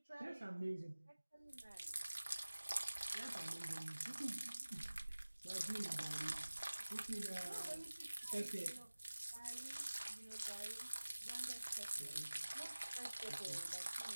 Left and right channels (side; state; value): both; inverted; correlation -1.00